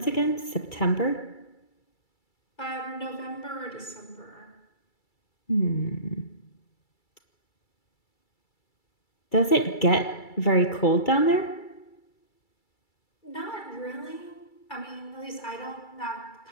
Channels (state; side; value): late; right; 2.3 ms